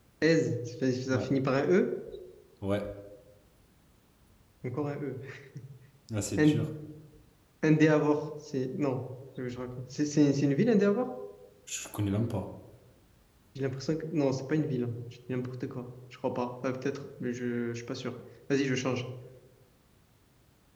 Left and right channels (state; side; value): identical; both; correlation 1.00